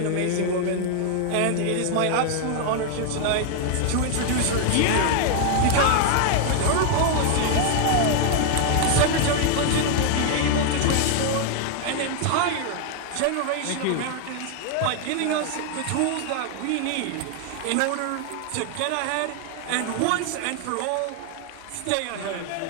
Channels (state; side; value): different; both; correlation 0.00